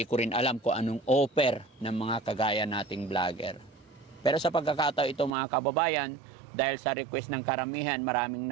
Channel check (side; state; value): left; drops out; at 5.3 s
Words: ko rin alam kung anong offer ng mga kagaya nating vlogger. Pero sa pagkakataon ito mga kababayan, dahil sa request ng karamihan, maraming